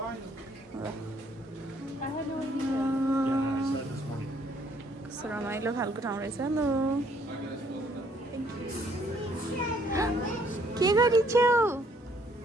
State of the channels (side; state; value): both; normal; correlation 0.65